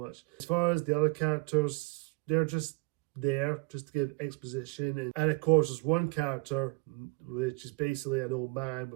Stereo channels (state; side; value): quieter; left; 27.9 dB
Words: As far as the other characters, they're just there just to give exposition, and of course there's one character which is basically an old man